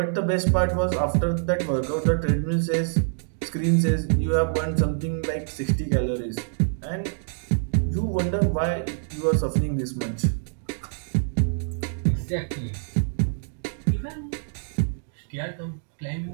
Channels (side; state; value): left; silent; digital silence